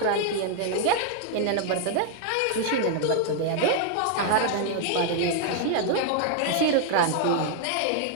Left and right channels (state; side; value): different; both; correlation 0.00